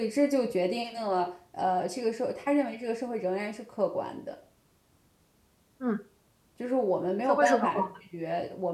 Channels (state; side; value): identical; both; correlation 1.00